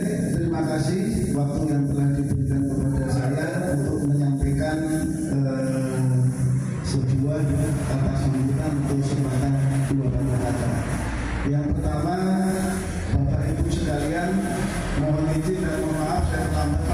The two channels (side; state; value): both; identical; correlation 1.00